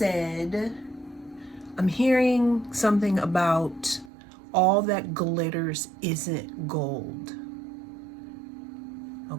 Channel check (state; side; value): drops out; left; at 4.1 s